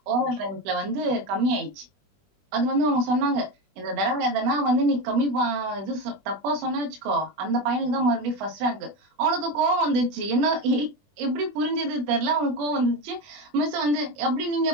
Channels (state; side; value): late; left; 20 ms